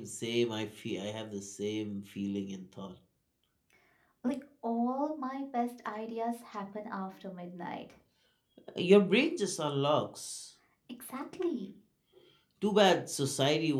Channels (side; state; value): both; identical; correlation 1.00